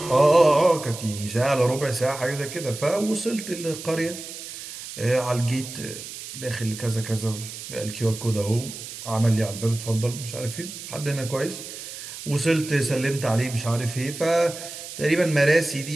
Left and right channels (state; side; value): noise; right; hiss, 11 dB below the sound